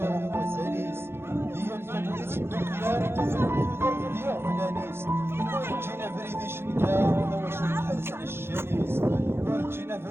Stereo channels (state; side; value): late; left; 0.12 ms